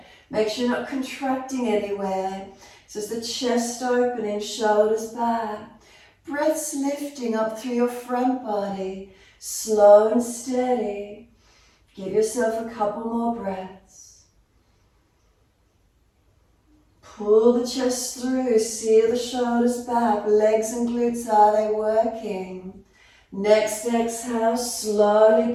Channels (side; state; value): both; identical; correlation 1.00